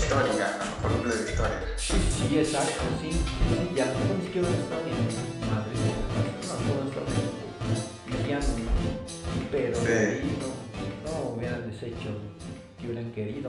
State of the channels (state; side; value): identical; both; correlation 1.00